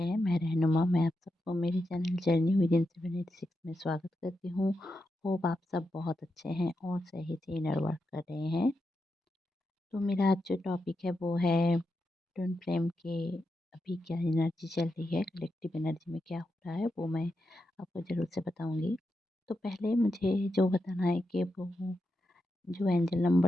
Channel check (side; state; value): both; normal; correlation 0.87